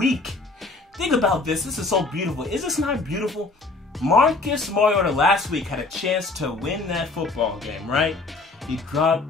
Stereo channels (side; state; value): right; quieter; 3.5 dB